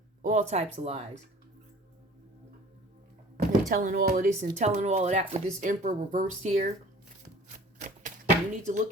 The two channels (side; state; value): both; normal; correlation 0.47